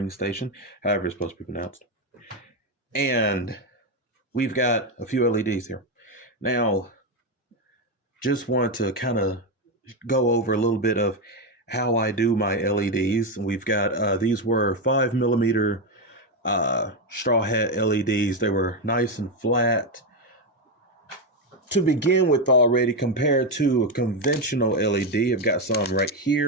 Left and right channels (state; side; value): normal; both; correlation 0.08